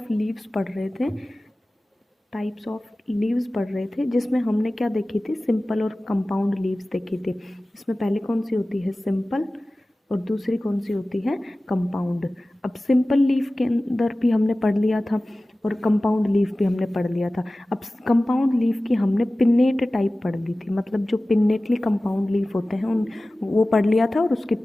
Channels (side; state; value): both; normal; correlation 0.97